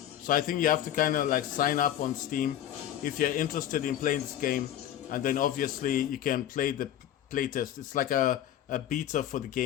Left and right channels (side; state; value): right; quieter; 11.5 dB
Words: So I think you have to kind of like sign up on Steam if you're interested in playing this game, and then obviously you can play the playtest. It's like a beta for the